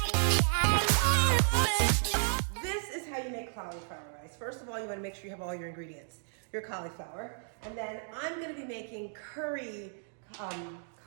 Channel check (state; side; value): silent; left; digital silence